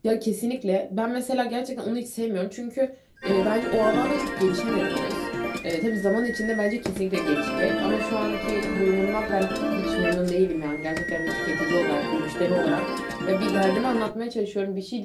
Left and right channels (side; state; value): both; identical; correlation 1.00